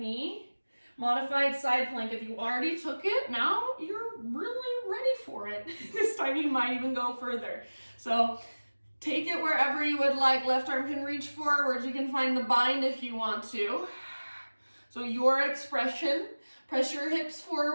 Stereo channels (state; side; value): inverted; both; correlation -1.00